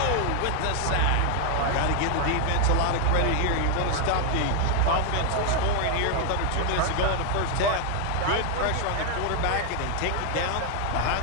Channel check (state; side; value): different; both; correlation 0.00